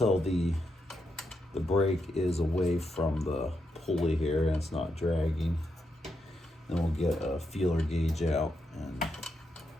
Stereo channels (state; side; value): normal; both; correlation 0.83